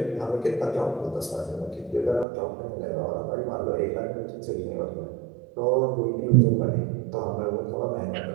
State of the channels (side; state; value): left; drops out; at 2.2 s